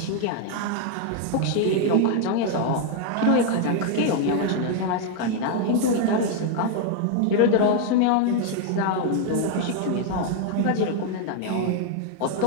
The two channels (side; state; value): both; different; correlation 0.00